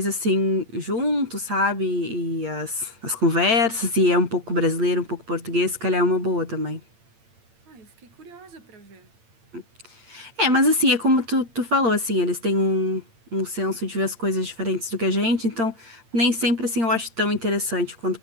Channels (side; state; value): left; late; 8.8 ms